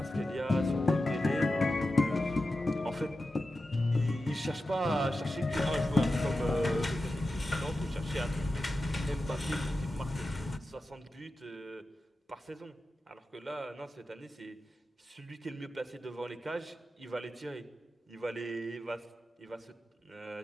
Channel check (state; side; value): normal; both; correlation 0.92